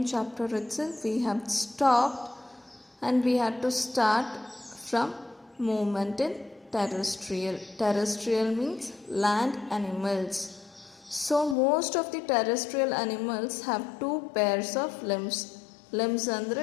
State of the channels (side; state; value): right; drops out; at 11.6 s